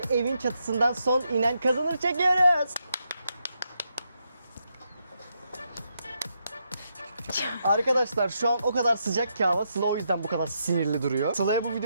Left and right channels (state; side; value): inverted; both; correlation -0.81